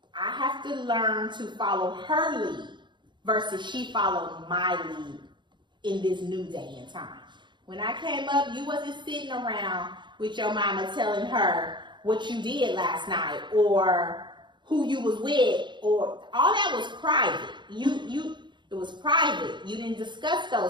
I have to learn to follow her lead versus she followed my lead in this new day and time. When I came up, you wasn't sitting around with your mama telling her what you did last night or who you was with, or all that was private. It was private. You didn't discuss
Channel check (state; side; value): late; left; 0.22 ms